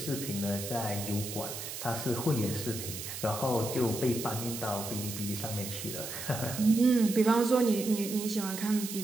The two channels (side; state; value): right; noise; hiss, 8 dB below the sound